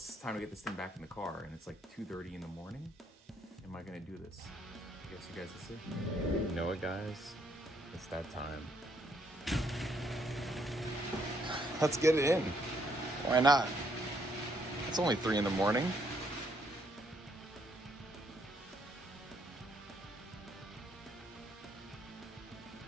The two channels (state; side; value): normal; both; correlation 0.71